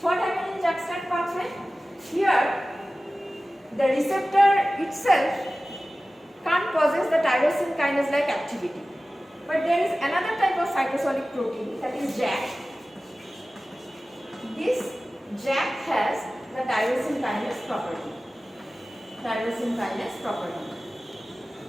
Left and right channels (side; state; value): both; normal; correlation 0.96